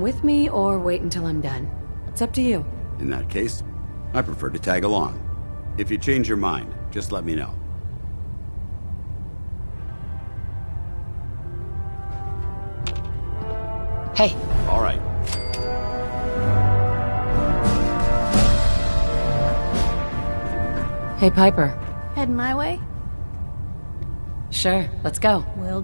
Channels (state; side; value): inverted; both; correlation -1.00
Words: with me or wait until I'm done. It's up to you. In that case, I prefer to tag along. If you change your mind, just let me know. Hey. All right. Hey, Piper. Heading my way? Sure, let's go. Will